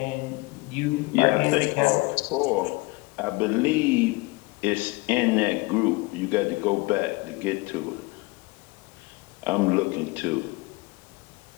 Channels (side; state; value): right; quieter; 24.4 dB